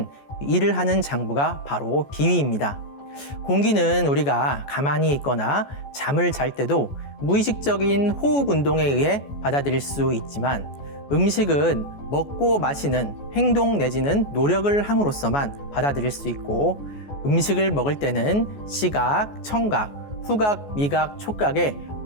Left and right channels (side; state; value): right; late; 14 ms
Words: 일을 하는 장부가 바로 비위입니다. 공기는 우리가 가만히 있거나 잠을 잘 때도 무의식적인 호흡 운동에 의해 받아들일 수 있지만 음식은 먹고 마시는 행동 내지는 노력을 함으로써만 받아들일 수 있고 음식을 먹을 때는 시각, 청각, 후각, 미각, 촉각의